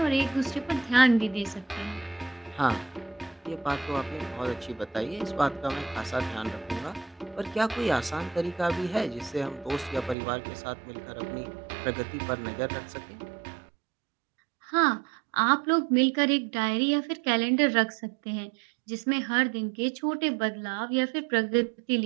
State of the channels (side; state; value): left; drops out; at 10.2 s